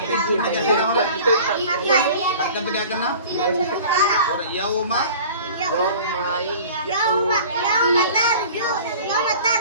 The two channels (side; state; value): both; inverted; correlation -0.43